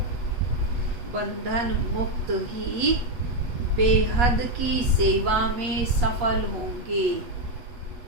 बंधन मुक्त ही बेहद की सेवा में सफल होंगे।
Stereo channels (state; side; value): late; left; 8.4 ms